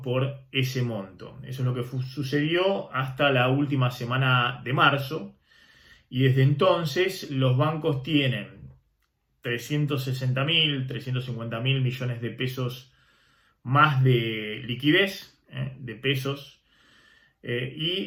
por ese monto. Eso es lo que sucedió hasta la última semana de marzo, y desde entonces los bancos tienen 360.000, 350.000 millones de pesos más de liquidez, de pesos,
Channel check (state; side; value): identical; both; correlation 1.00